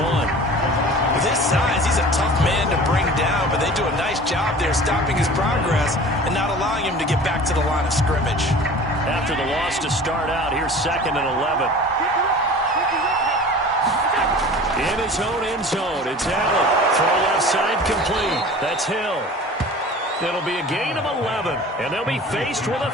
With his size, he's a tough man to bring down, but they do a nice job there stopping his progress and not allowing him to get back to the line of scrimmage. After the loss to start out, here's 2nd and 11. In his own end zone, it's Allen. Throw left side complete. That's Hill. It'll be a gain of 11, and they'll be faced with a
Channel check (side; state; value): both; normal; correlation 0.41